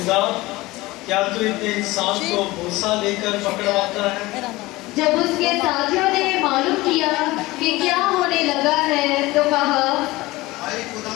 کیا تو اتنے انسان کو بوسہ لے کر پکڑواتا ہے؟ جب اس کے ساتھیوں نے معلوم کیا کہ کیا ہونے لگا ہے تو کہا، اے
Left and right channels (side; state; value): right; quieter; 19.9 dB